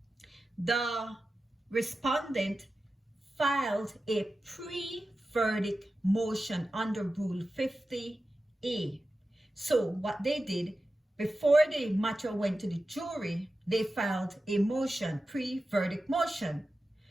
the respondent filed a pre-verdict motion under Rule 50A. So what they did, before the matter went to the jury, they filed a motion, pre-verdict motion.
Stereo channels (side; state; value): both; normal; correlation 0.93